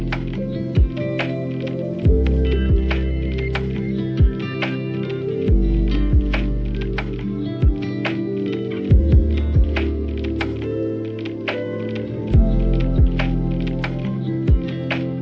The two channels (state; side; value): identical; both; correlation 1.00